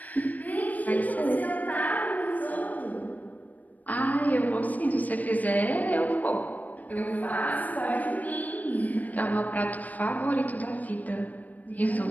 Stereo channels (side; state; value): right; late; 0.077 ms